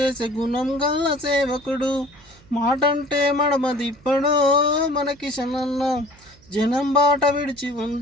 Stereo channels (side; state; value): right; noise; hum, 26 dB below the sound